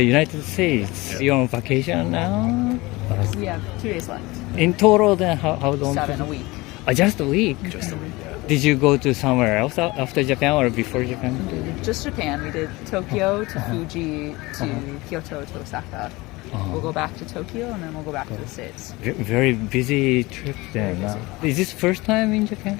United States. You're on vacation now? We have 2 days left. In total, then how long? 7 a week. Just a week? Just a week, yeah. Did you go to somewhere else after Japan or before Japan? Just Japan. We did Tokyo to Fuji to Kyoto to Osaka. We'll go back to Tokyo and then we'll go back to the States. Very busy trip then. Is this first time in Japan?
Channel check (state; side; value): quieter; right; 22.0 dB